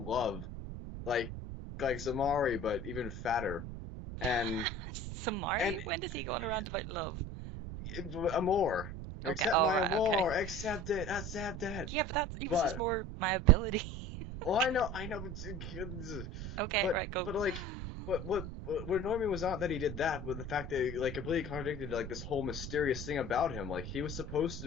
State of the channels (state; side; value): noise; right; rumble, 7 dB below the sound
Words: love, like Zamari, but even fatter, and Zamari. When does he go on around about love? Amor. Okay, accept my amor, okay. Accept it. Yeah, but that's just more my ability. Well, I know, but okay, right, go. But what annoyed me was not that he did that, but the fact that he completely contradicted this whole mysterious thing about him. He was supposed